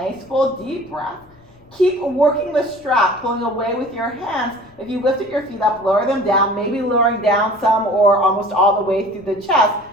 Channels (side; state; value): left; noise; rumble, 28 dB below the sound